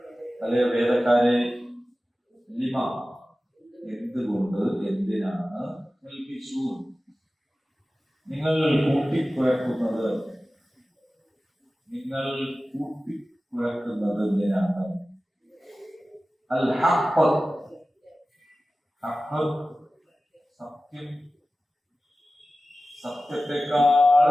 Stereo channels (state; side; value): normal; both; correlation 0.96